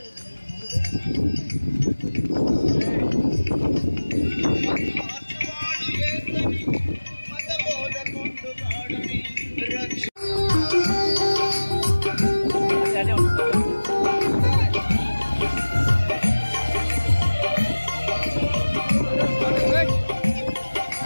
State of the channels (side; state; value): both; inverted; correlation -1.00